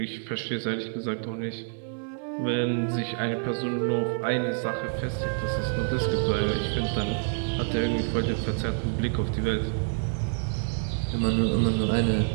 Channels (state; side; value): silent; left; 58 dB below the other